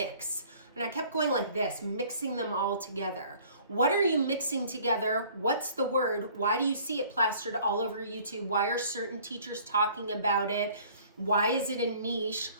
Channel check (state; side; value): inverted; both; correlation -0.53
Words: And I kept going like this, mixing them all together. What are you mixing together? What's the word? Why do you see it plastered all over YouTube? Why are certain teachers talking about it? Why is it a niche?